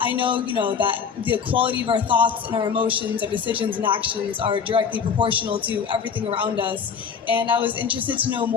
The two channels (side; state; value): right; quieter; 6.6 dB